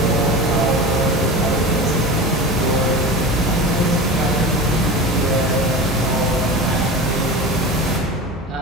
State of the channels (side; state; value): both; normal; correlation 0.30